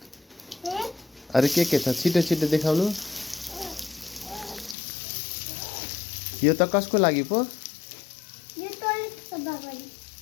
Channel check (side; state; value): right; drops out; at 4.8 s